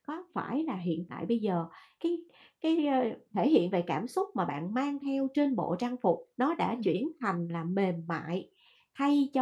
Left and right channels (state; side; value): identical; both; correlation 1.00